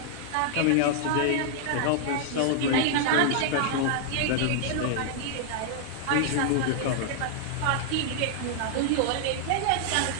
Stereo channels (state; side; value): different; both; correlation -0.01